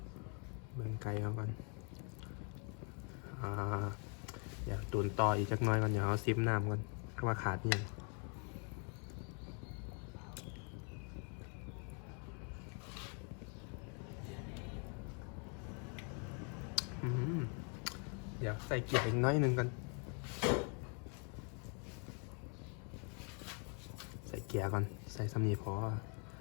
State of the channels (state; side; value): quieter; right; 38.6 dB